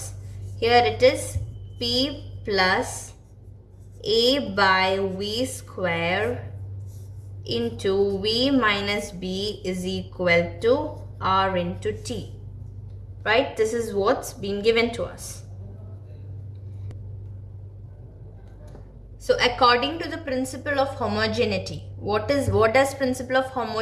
Here it is P plus A by V square into V minus B is equal to R into T. Right? This is what's been given to us. So according to the principle of homogeneity, what does principle of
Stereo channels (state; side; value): identical; both; correlation 1.00